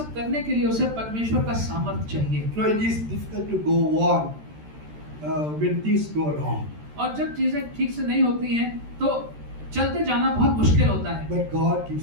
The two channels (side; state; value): left; late; 13 ms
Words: करने के लिए उसे परमेश्वर का सामर्थ्य चाहिए। No, it is difficult to go on when things go wrong. और जब चीजें ठीक से नहीं होती हैं तो चलते जाना बहुत मुश्किल होता है, But God